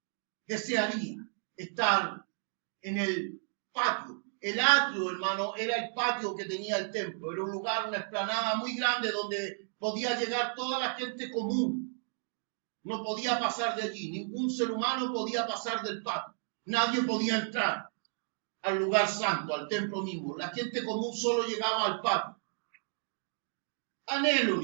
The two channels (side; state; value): left; silent; 56 dB below the other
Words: desearía estar en el patio. El atrio, hermano, era el patio que tenía el templo. Era un lugar, una explanada muy grande donde podía llegar toda la gente común. No podía pasar de allí. Ningún ser humano podía pasar del patio. Nadie podía entrar al lugar santo, al templo mismo. La gente común solo llegaba al patio. Anhelo,